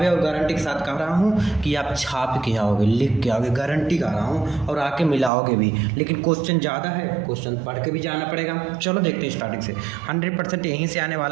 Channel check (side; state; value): left; drops out; at 5.3 s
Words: और गारंटी के साथ कह रहा हूँ कि आप छाप के आओगे, लिख के आओगे, गारंटी कर रहा हूँ, और आके मिलाओगे भी। लेकिन क्वेश्चन ज़्यादा है, क्वेश्चन पढ़ के भी जाना पड़ेगा। चलो देखते हैं स्टार्टिंग से। 100% यहीं से आने